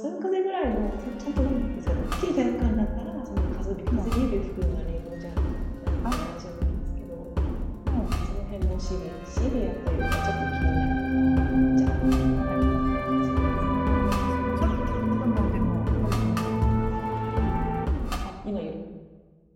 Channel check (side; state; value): both; identical; correlation 1.00